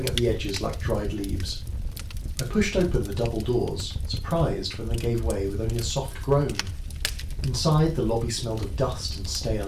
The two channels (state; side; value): identical; both; correlation 1.00